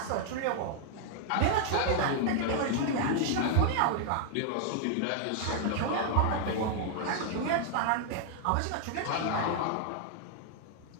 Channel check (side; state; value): both; different; correlation 0.00